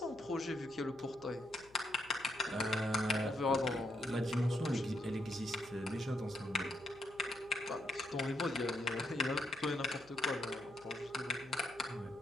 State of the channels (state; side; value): noise; left; hum, 26 dB below the sound